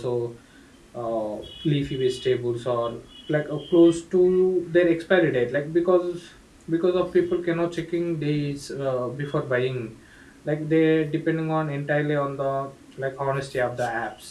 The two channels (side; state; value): both; identical; correlation 1.00